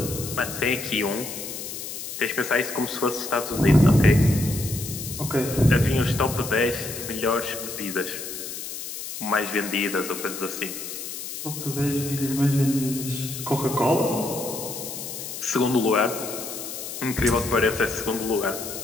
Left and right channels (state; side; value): noise; left; hiss, 8 dB below the sound